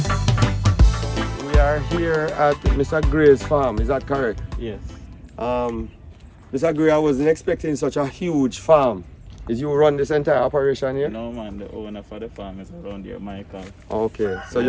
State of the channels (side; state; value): both; identical; correlation 1.00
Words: at Mr. Gray's farm, is that correct? Yes. Mr. Gray, I wasn't expecting such a huge farm. Did you run this entire operation here? No man, the owner for the farm is around here, Michael. Okay, so